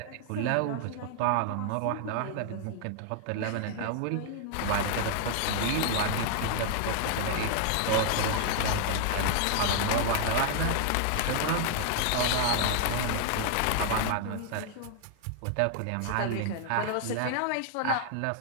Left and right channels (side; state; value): both; different; correlation 0.00